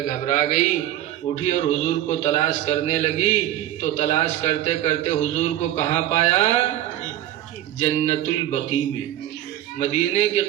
گھبرا گئی، اٹھی اور حضور کو تلاش کرنے لگی، تو تلاش کرتے کرتے حضور کو کہاں پایا؟ جنت البقیع میں، مدینے کے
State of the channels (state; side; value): quieter; left; 13.0 dB